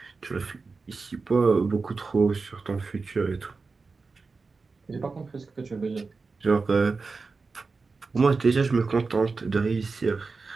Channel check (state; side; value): quieter; left; 4.3 dB